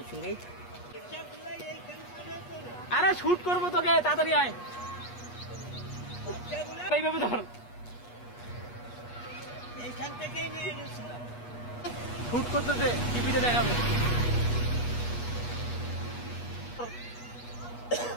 সঙ্গেই। আরে শুট করবো তোকে, তাড়াতাড়ি আয়। এইভাবে ধর, এইখান থেকেই নিয়ে গেছিলাম। শুট করতেছে, টিভিতে দেখাবে।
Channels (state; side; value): late; right; 8.3 ms